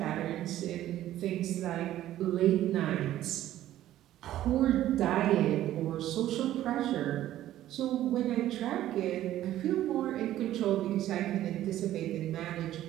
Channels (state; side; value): quieter; left; 13.3 dB